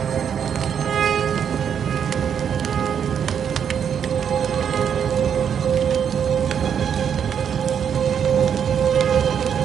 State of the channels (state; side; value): quieter; left; 8.0 dB